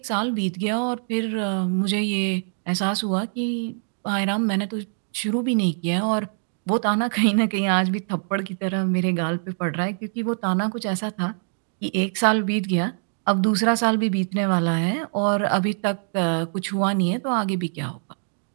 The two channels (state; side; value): silent; left; 63 dB below the other